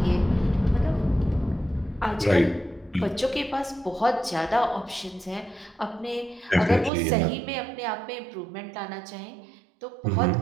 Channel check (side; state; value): left; drops out; at 6.9 s